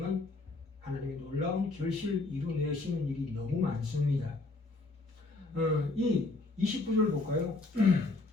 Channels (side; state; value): right; quieter; 3.3 dB